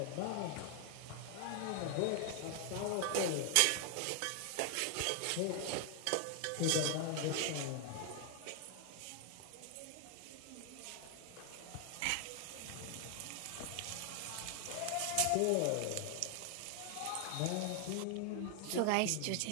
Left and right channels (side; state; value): both; different; correlation 0.00